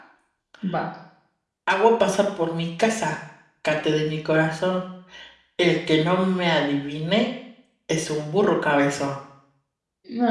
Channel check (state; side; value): identical; both; correlation 1.00